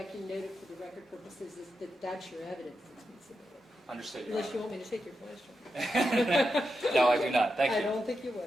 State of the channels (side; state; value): both; normal; correlation 0.87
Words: can note it for the record purposes, is that that's your evidence that's been submitted. Understood, Your Unless you Honor. want me to take your question. No, I do not. Thank I you. don't think you